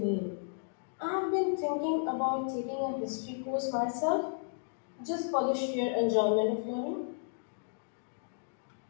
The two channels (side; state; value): right; silent; digital silence